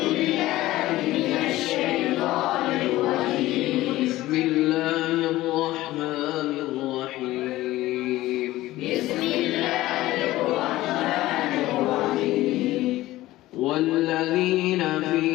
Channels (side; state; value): right; quieter; 16.7 dB